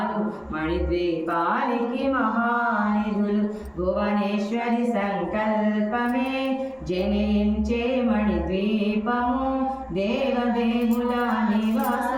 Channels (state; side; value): identical; both; correlation 1.00